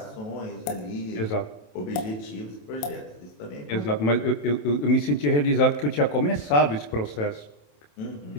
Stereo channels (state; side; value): late; right; 27 ms